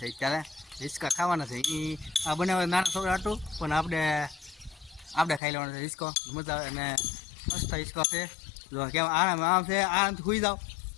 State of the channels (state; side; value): drops out; right; at 5.4 s